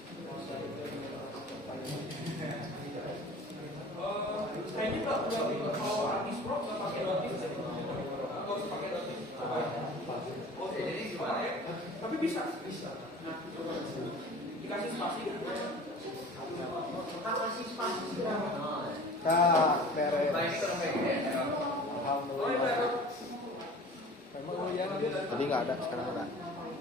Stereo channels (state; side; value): normal; both; correlation 0.42